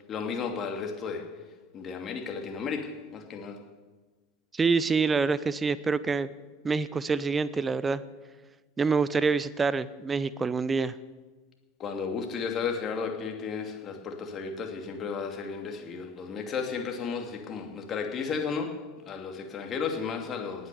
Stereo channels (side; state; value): both; normal; correlation 0.69